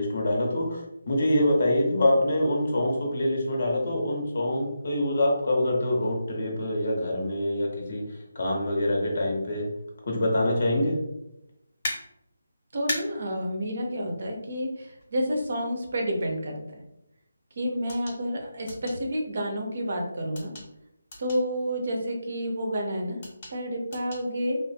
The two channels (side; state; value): both; inverted; correlation -0.85